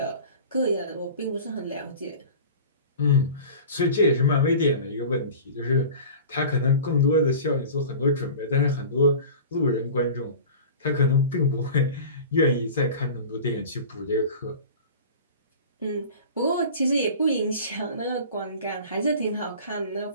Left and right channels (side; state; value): both; inverted; correlation -0.38